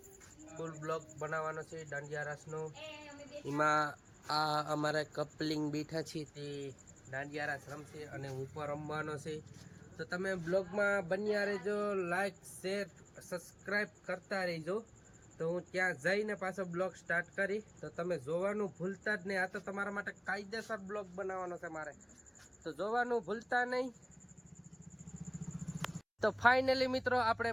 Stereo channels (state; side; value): identical; both; correlation 1.00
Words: ફૂલ બ્લોગ બનાવવાનો છે દાંડિયા રાસનો। એમાં આ અમારે કપલિંગ બેઠા છે તે દાંડિયા રાસ રમશે અને ઉપર રમવાનો છે। તો તમે બ્લોગમાં બન્યા રહેજો, લાઈક શેર સબસ્ક્રાઈબ કરતા રહેજો। તો હું ત્યાં જઈને પાછો બ્લોગ સ્ટાર્ટ કરી, તો તમે જોવાનું ભૂલતા જ નહીં। આ તો તમારા માટે કાયદેસર બ્લોગ બનાવવાનો છે મારે, તો જોવાનું ભૂલતા નહીં। તો ફાઇનલી મિત્રો આપણે